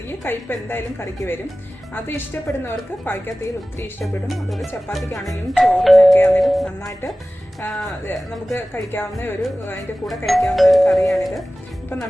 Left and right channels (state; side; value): normal; both; correlation 0.97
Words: കയ്പ്പ് എന്തായാലും കറിക്ക് വരും. അത് ഇഷ്ടപ്പെടുന്നവർക്ക് പാവയ്ക്ക തീയൽ ഒത്തിരി ഇഷ്ടപ്പെടും. അതുപോലെ ചപ്പാത്തിക്കാണെങ്കിലും ചോറിനൊക്കെ ആണെങ്കിലും നന്നായിട്ട് നമുക്ക് കഴിക്കാവുന്ന അതിൻ്റെ കൂടെ കഴിക്കാവുന്ന ഒരു കറിയാണിത്. അപ്പം